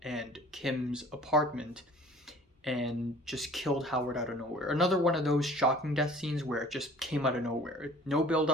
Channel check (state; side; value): normal; both; correlation 0.49